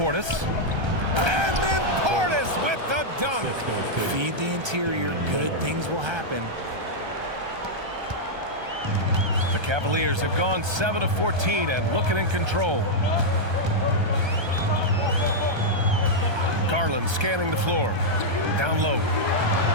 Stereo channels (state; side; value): late; left; 1.3 ms